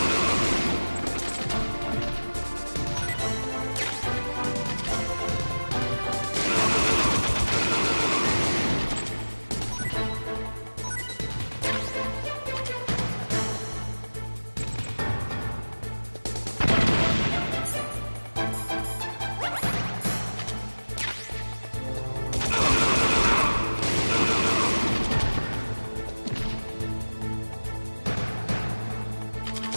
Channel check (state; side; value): inverted; both; correlation -1.00